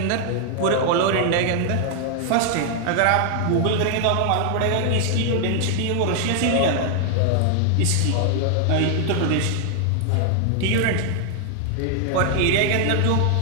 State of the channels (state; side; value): different; both; correlation 0.00